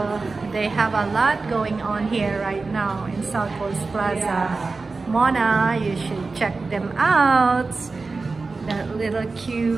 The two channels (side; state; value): left; quieter; 3.9 dB